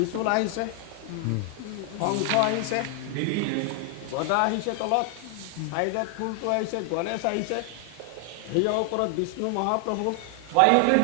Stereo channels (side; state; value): both; different; correlation 0.00